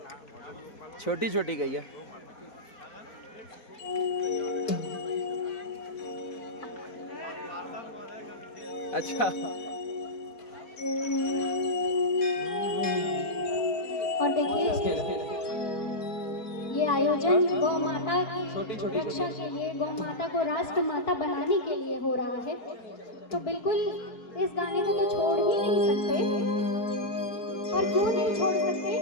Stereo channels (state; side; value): late; right; 4.6 ms